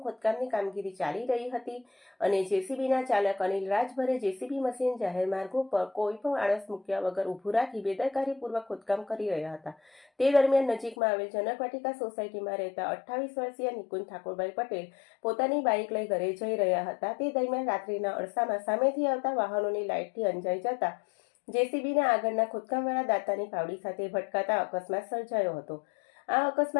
ખોદકામની કામગીરી ચાલી રહી હતી અને જેસીબીના ચાલક અનિલ રાજભરે જેસીબી મશીન જાહેર માર્ગો પર કોઈ પણ આળસ મૂક્યા વગર ઊભું રાખી બેદરકારીપૂર્વક ખોદકામ કરી રહ્યા હતા। તે દરમિયાન નજીકમાં આવેલ જનકવાટિકા સોસાયટીમાં રહેતા 28 વર્ષીય નિકુંજ ઠાકોરભાઈ પટેલ પોતાની બાઇક લઈ ઘરે જઈ રહ્યા હતા। તે દરમિયાન રાત્રિના અરસામાં સામેથી આવતા વાહનોની લાઇટથી અંજાઈ જતા જેસીબીના આગળના ખોદકામવાળા દાતાની પાવડી સાથે ભટકાતા અકસ્માત સર્જાયો હતો। આ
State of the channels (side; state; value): right; drops out; at 11.0 s